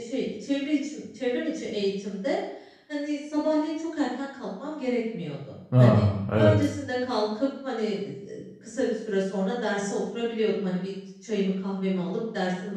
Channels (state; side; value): identical; both; correlation 1.00